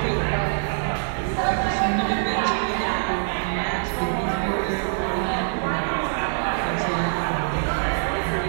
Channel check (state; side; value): silent; left; digital silence